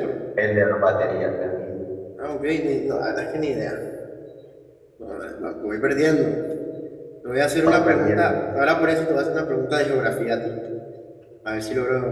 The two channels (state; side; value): identical; both; correlation 1.00